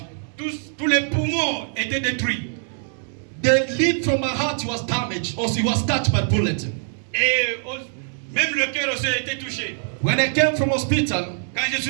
tous les poumons étaient détruits. The lead from my heart was damaged. Also, it was touched by bullet. Et même le cœur aussi a été touché. When I came from hospital, Quand je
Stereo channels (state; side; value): silent; left; digital silence